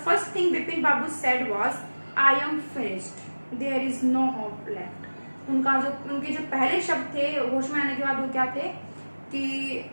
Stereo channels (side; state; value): both; inverted; correlation -1.00